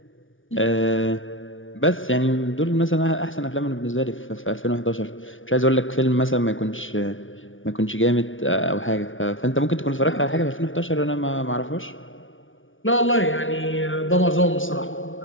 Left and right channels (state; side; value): late; right; 0.57 ms